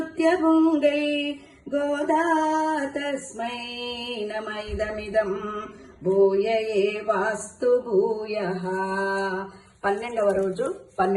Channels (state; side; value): identical; both; correlation 1.00